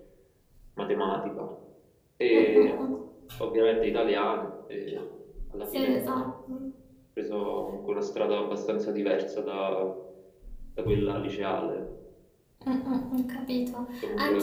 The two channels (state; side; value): identical; both; correlation 1.00